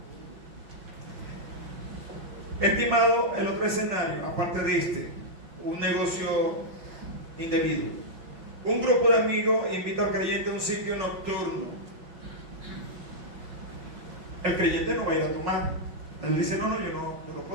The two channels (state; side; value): late; left; 5.5 ms